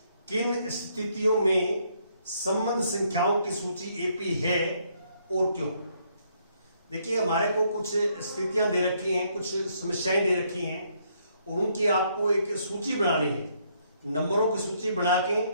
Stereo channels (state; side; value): inverted; both; correlation -0.71